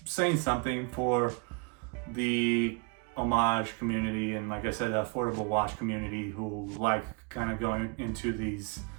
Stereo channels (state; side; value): quieter; left; 31.8 dB